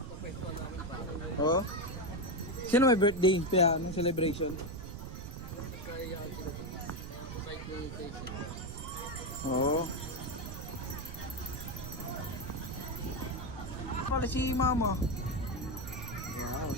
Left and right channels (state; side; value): noise; right; rumble, 9 dB below the sound